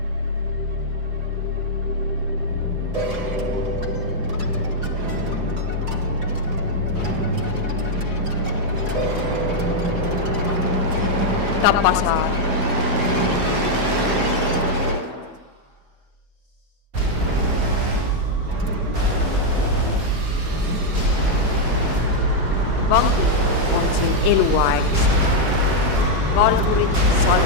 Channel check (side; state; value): left; late; 4.9 ms